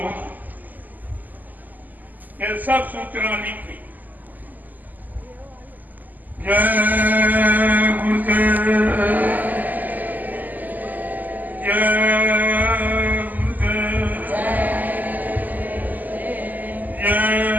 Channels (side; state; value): left; late; 0.083 ms